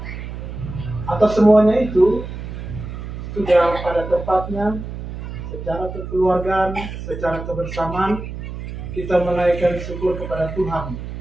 Atas semuanya itu sudah pada tempatnya, secara kekeluargaan, secara kebersamaan, kita menaikkan syukur kepada Tuhan.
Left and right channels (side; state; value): right; noise; hum, 8 dB below the sound